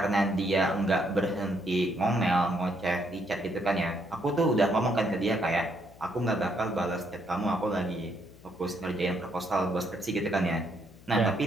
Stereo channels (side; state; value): left; noise; hum, 22 dB below the sound